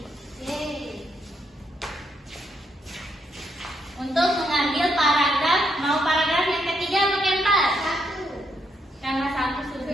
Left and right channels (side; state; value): both; normal; correlation 0.77